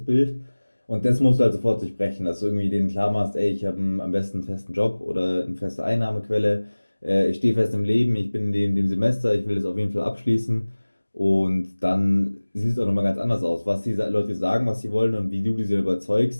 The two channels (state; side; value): inverted; both; correlation -1.00